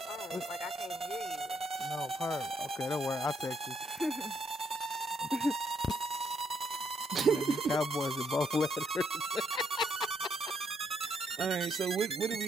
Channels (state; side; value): normal; both; correlation 0.74